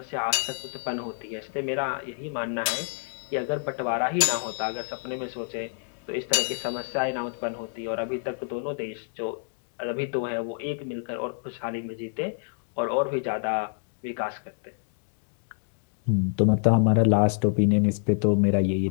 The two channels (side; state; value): right; silent; 60 dB below the other